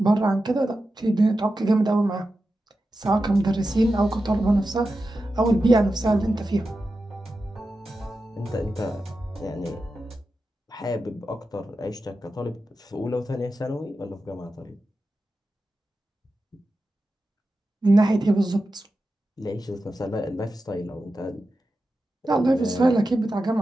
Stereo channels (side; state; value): both; normal; correlation 0.91